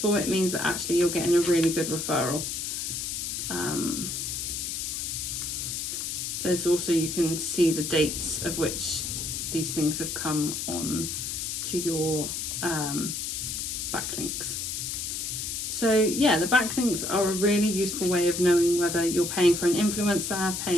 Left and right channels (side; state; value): left; noise; hiss, 3 dB below the sound